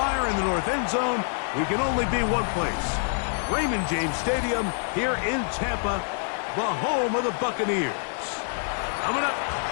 in the north end zone. We can only be one place. Raymond James Stadium here in Tampa, the home of the Buccaneers. Coming up,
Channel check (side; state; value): right; silent; 61 dB below the other